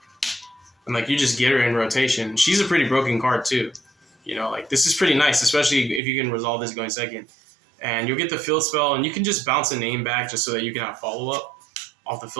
And like you just get her in rotation. She's a pretty broken card too. You know, like this is pretty nice, especially if you can resolve this going second. And you'll get the field spell, and you can just bounce a name back just so that you can have follow-up off the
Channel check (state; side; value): drops out; left; at 6.0 s